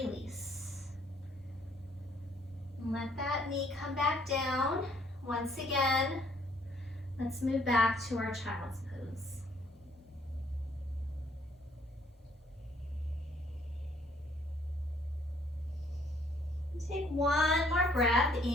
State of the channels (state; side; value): normal; both; correlation 0.65